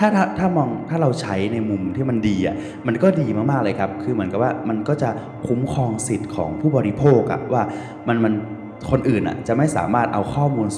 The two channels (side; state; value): both; identical; correlation 1.00